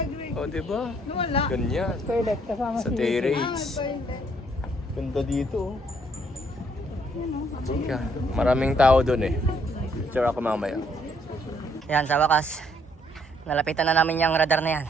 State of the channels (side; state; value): both; normal; correlation 0.67